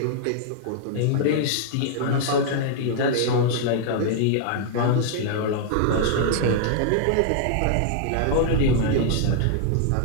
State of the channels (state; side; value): different; both; correlation -0.01